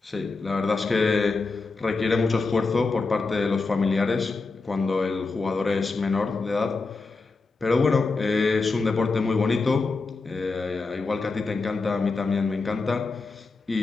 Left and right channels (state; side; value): quieter; right; 4.0 dB